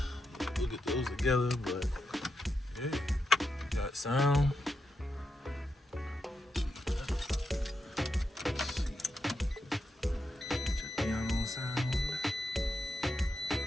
We'll get those together, but yeah, got sound.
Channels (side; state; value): both; normal; correlation 0.84